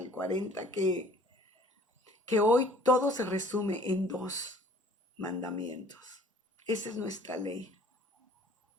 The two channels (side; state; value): both; normal; correlation 0.53